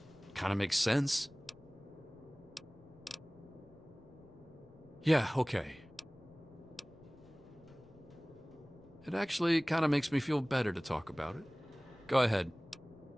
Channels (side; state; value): left; noise; rumble, 26 dB below the sound